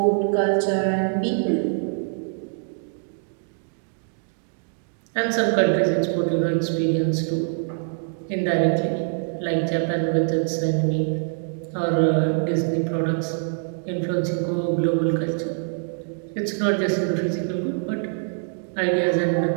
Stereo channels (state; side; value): silent; left; digital silence